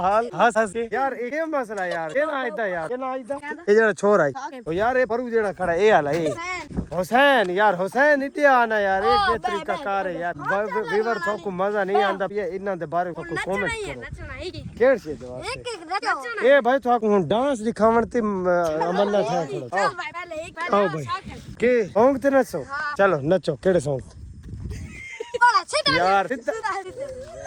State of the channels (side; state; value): both; identical; correlation 1.00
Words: हाल हंस हंस के यार ये मसला यार के ना इदा यार के ना इदा ये जेड़ा छोर आई ओ यार ये परू जेड़ा खड़ा ए हाल है हुसैन यार हुसैन इते आना यार ये के तरीका कार है यार वीवर तो को मजा नहीं आंदा ये इना दे बारे को कमेंट करो केड़ से दवा ए भाई तो डांस दिखावन ते अमन्ना था थोड़ा आओ भाई के सॉन्ग ते नचो चलो नचो केड़े सॉन्ग यार